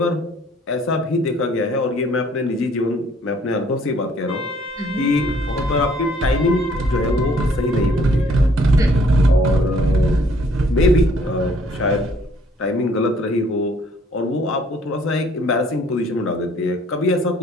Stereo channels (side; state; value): both; normal; correlation 0.60